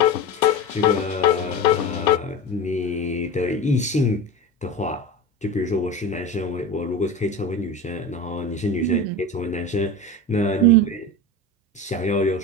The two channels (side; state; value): both; normal; correlation 0.27